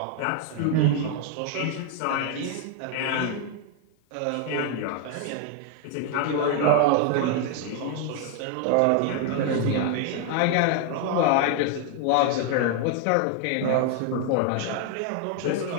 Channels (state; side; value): different; both; correlation 0.00